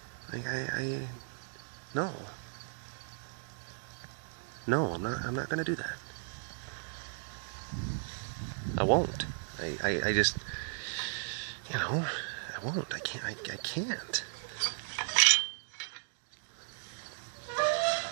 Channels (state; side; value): silent; left; digital silence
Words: Like no, I'm not gonna do that. I won't. I just, you know, I won't. I can't.